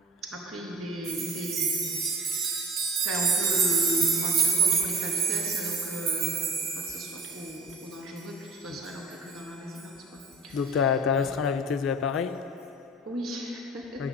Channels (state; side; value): normal; both; correlation 0.41